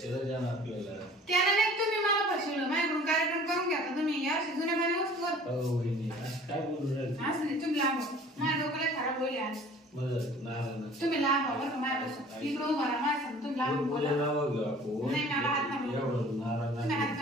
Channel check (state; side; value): normal; both; correlation 0.48